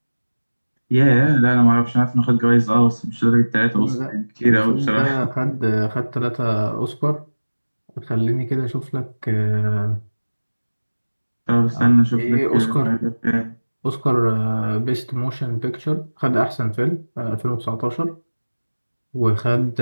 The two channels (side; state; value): both; inverted; correlation -1.00